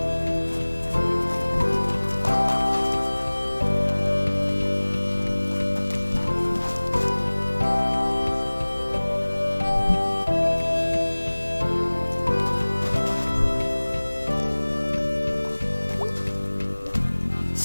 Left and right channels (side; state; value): both; inverted; correlation -1.00